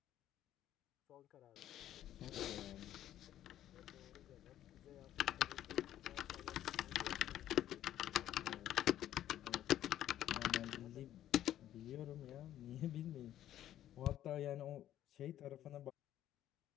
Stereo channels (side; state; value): right; quieter; 12.1 dB